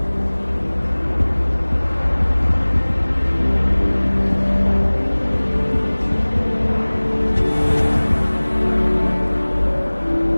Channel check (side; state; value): both; inverted; correlation -1.00